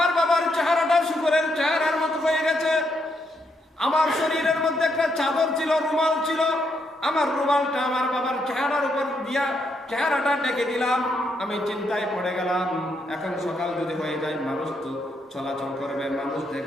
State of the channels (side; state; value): both; normal; correlation 0.77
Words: বাবার চেহারাটা শুকরের চেহারার মতো হয়ে গেছে। আমার শরীরের মধ্যে একটা চাদর ছিল, রুমাল ছিল, আমার রুমালটা আমার বাবার চেহারার উপর দিয়া চেহারাটা ডেকে দিলাম। আমি চিন্তায় পড়ে গেলাম, এখন সকাল যদি হয়ে যায় মানুষ তো চলাচল করবে, মানুষ